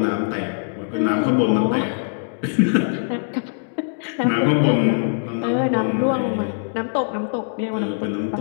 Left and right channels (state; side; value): silent; right; digital silence